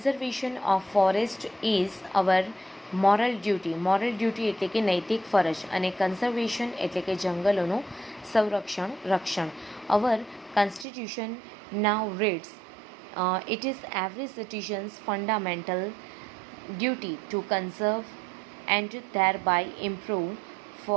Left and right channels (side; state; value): left; drops out; at 10.9 s